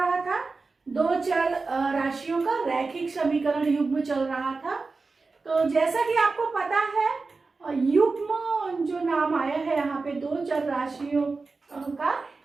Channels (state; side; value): quieter; left; 4.0 dB